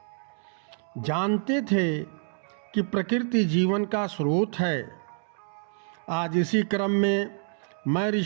जानते थे कि प्रकृति जीवन का स्रोत है। आज इसी क्रम में मैं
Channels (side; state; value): left; silent; 60 dB below the other